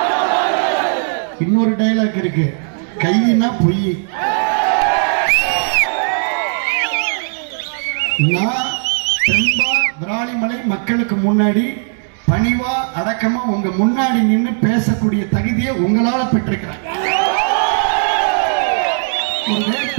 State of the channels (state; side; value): silent; left; 68 dB below the other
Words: இன்னொரு டைலாக் இருக்கு, கையினா பொய். நான் தெம்பா விராலிமலை மக்களுக்கு முன்னாடி பணிவா அடக்கமா உங்க முன்னாடி நின்று பேசக்கூடிய தகுதியை உங்களால பெற்றிருக்கிறேன். ஒரு